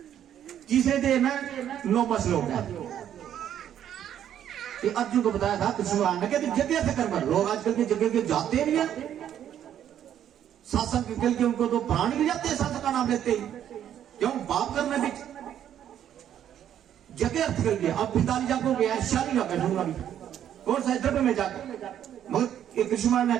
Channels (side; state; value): left; quieter; 10.2 dB